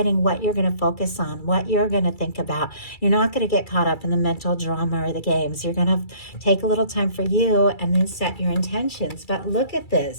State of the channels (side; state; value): right; late; 2.3 ms